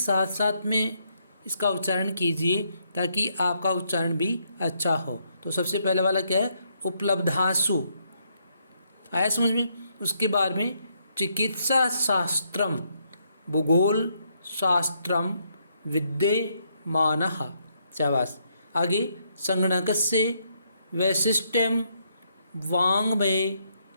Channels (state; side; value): inverted; both; correlation -0.74